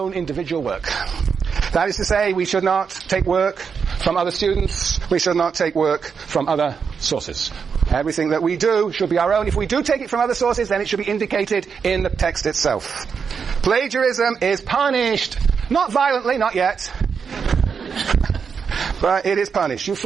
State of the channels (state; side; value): quieter; left; 6.2 dB